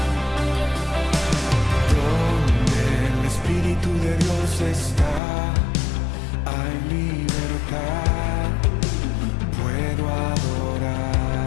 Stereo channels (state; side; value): drops out; right; at 5.2 s